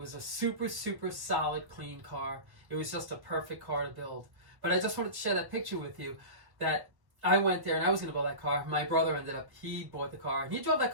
a super, super solid, clean car. It was just a perfect car to build. But I just wanted to share that picture with you, that I went there and I was going to buy that car. My brother he bought the car, and he drove that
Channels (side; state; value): left; late; 1.1 ms